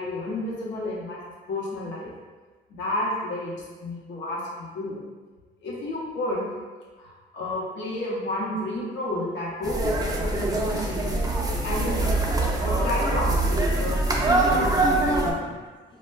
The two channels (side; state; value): both; normal; correlation 0.47